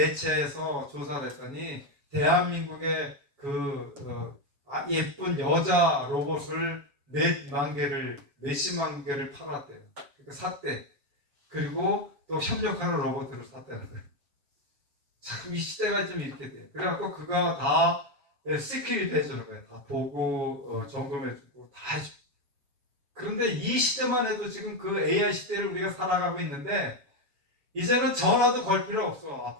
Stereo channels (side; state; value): left; late; 7.1 ms